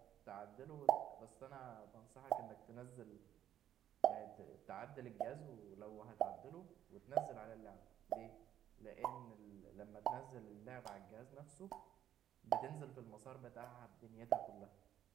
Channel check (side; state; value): left; quieter; 11.1 dB